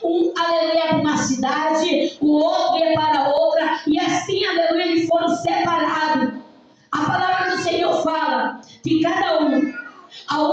um, aleluia, para uma cidade, o outro ia para outra, e assim, aleluia, eles foram separados. A palavra do Senhor fala que cada um,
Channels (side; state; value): both; identical; correlation 1.00